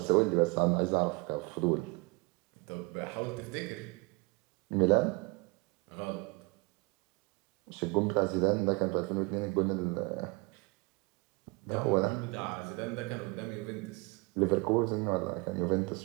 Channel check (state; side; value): quieter; left; 26.9 dB